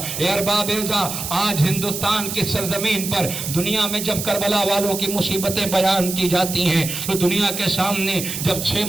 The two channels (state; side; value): noise; right; hiss, 5 dB below the sound